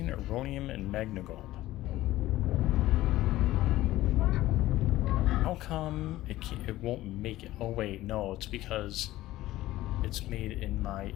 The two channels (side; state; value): right; quieter; 16.0 dB